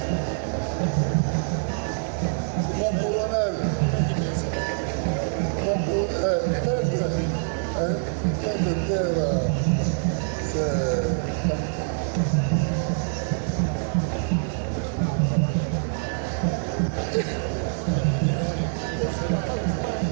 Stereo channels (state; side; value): silent; left; 62 dB below the other